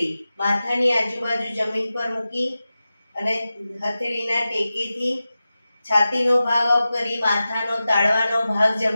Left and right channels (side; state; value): both; inverted; correlation -0.94